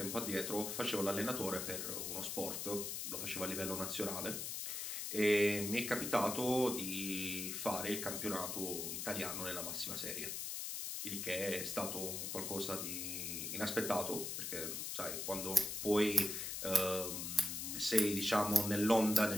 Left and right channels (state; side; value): noise; left; hiss, 4 dB below the sound